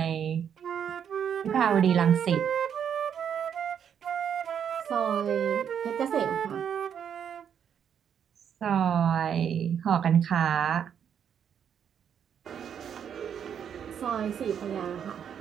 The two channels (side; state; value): left; quieter; 8.3 dB